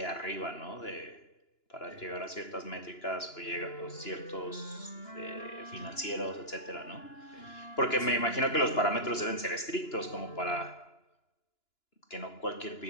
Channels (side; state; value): right; late; 2.9 ms